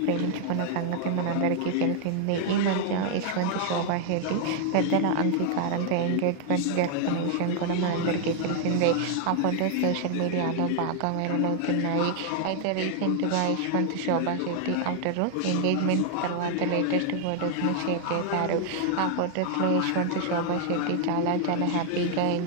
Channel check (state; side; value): different; both; correlation 0.00